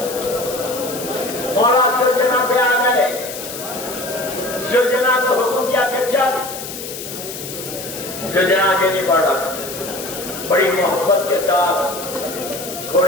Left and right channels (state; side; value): noise; left; hiss, 9 dB below the sound